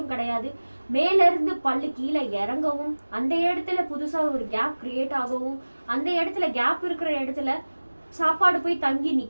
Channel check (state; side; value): inverted; both; correlation -1.00